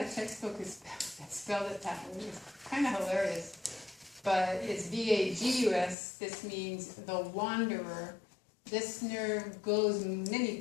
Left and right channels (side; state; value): right; drops out; at 6.0 s